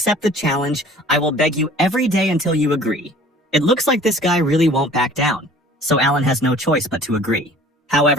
the challenge, I will beg you every day until you agree." It looks like this guy really won't back down, so Alan has no choice but to agree.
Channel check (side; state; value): both; normal; correlation 0.49